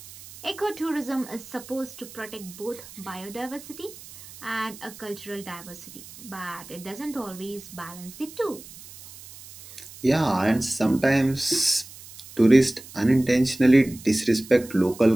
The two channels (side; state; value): right; noise; hiss, 18 dB below the sound